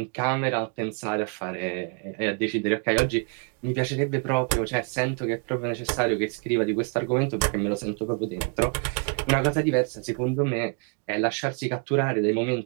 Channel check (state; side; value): quieter; left; 38.3 dB